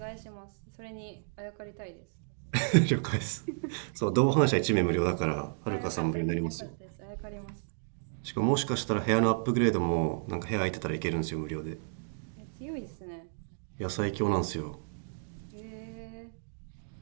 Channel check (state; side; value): silent; left; digital silence